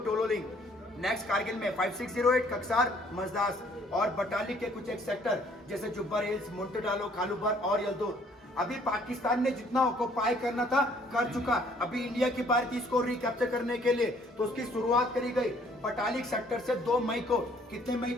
टोलोलिंग, नेक्स्ट कारगिल में 5608 कक्सार मजदास, और बटालिक के कुछ एक सेक्टर जैसे जुब्बर हिल्स, मुंटडालो, खालूबर और यलदौर। अभी पाकिस्तान ने जितना ऑक्युपाई करना था कर चुका। अभी इंडिया की बारी थी इसको रिकैप्चर करने के लिए, तो उसकी शुरुआत करी गई बटालिक सेक्टर से 2 मई को। कितने मई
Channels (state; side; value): normal; both; correlation 0.61